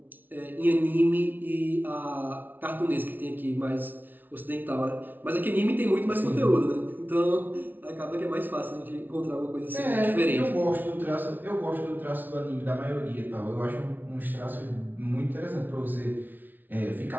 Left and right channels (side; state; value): left; late; 0.087 ms